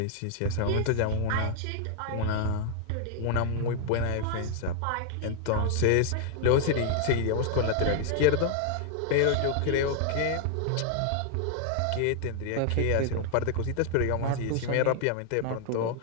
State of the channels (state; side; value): different; both; correlation 0.00